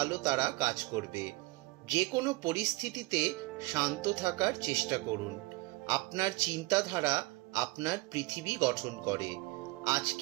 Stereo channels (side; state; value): left; quieter; 22.9 dB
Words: তারা কাজ করবে। যে কোনো পরিস্থিতিতে শান্ত থাকার চেষ্টা করুন। আপনার চিন্তাধারা আপনার পৃথিবী গঠন করে।